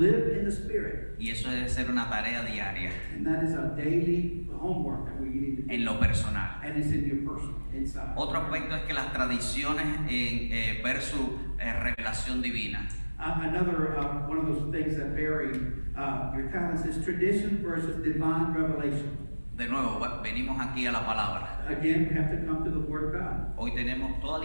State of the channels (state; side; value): inverted; both; correlation -1.00